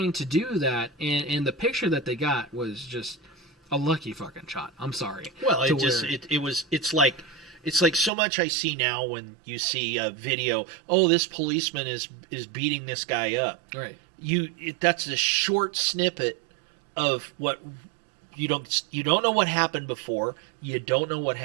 to do that, and the picture that they got was just a lucky fucking shot. I'm sorry. Well, it's like so much I see now when you see a video. Oh, this policeman is beating this guy up. Right. That's a short snippet of what you don't know what happened before. You don't know what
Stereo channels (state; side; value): drops out; left; at 8.1 s